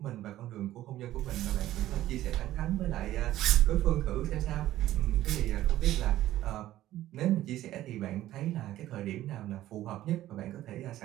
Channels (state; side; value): quieter; left; 14.2 dB